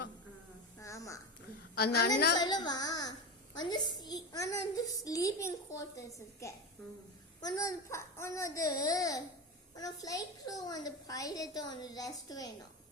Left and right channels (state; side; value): normal; both; correlation 0.20